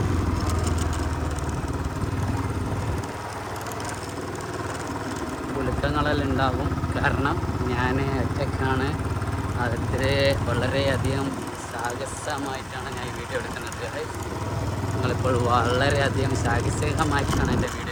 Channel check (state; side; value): noise; right; hiss, 29 dB below the sound